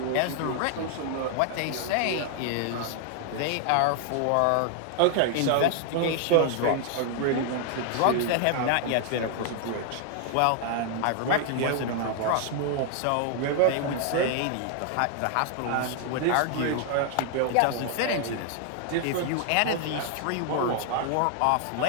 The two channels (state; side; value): different; both; correlation 0.00